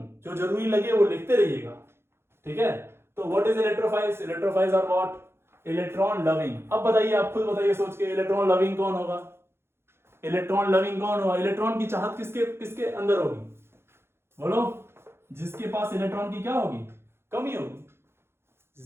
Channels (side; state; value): left; late; 0.12 ms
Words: जो जरूरी लगे वो लिखते रहिएगा, ठीक है। तो what is electrophiles, electrophiles are what, electron loving. अब बताइए, आप खुद बताइए सोच के, इलेक्ट्रॉन लविंग कौन होगा, इलेक्ट्रॉन लविंग कौन होगा, इलेक्ट्रॉन की चाहत किसके किसके अंदर होगी, बोलो, जिसके पास इलेक्ट्रॉन की क्या होगी, कमी होगी।